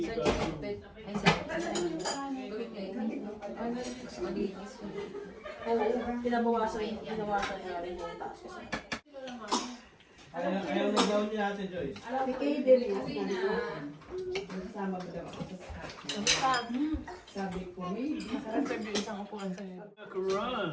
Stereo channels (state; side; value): identical; both; correlation 1.00